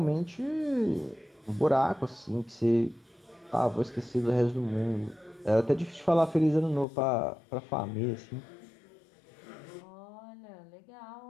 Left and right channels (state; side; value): drops out; right; at 6.9 s